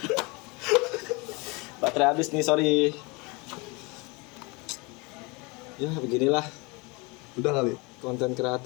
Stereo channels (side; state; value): right; quieter; 27.3 dB